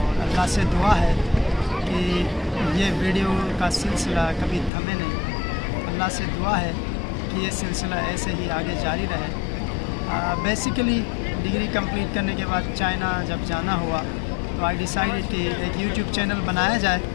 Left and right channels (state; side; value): drops out; right; at 4.7 s